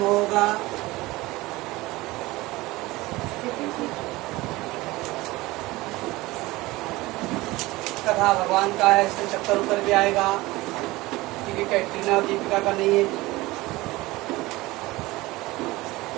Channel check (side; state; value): left; quieter; 20.0 dB